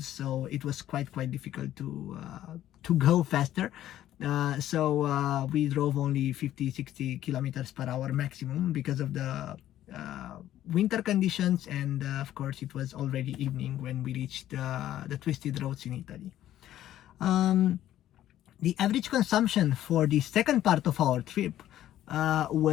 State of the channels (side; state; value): right; quieter; 12.7 dB